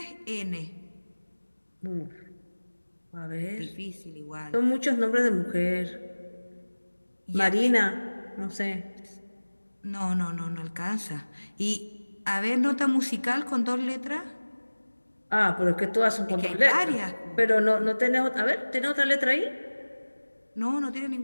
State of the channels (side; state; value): both; inverted; correlation -1.00